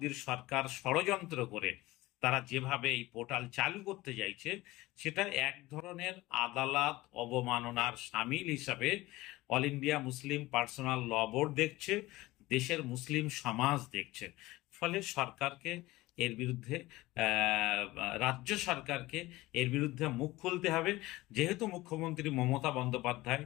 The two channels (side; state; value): right; quieter; 18.9 dB